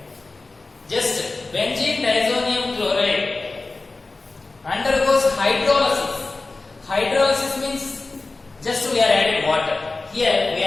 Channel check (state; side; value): quieter; right; 3.5 dB